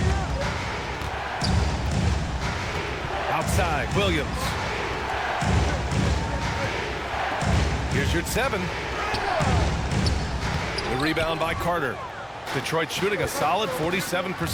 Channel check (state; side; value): identical; both; correlation 1.00